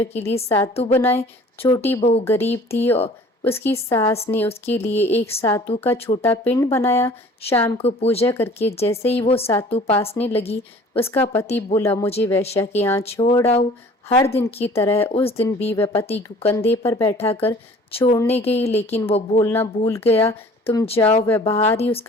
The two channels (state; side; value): normal; both; correlation 0.49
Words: के लिए सातु बनाए। छोटी बहू गरीब थी और उसकी सास ने उसके लिए एक सातु का छोटा पिंड बनाया। शाम को पूजा करके जैसे ही वो सातु पासने लगी, उसका पति बोला, मुझे वेश्या के यहाँ छोड़ आओ। हर दिन की तरह उस दिन भी वह पति को कंधे पर बैठाकर छोड़ने गई, लेकिन वो बोलना भूल गया, तुम जाओ। वह बाहर ही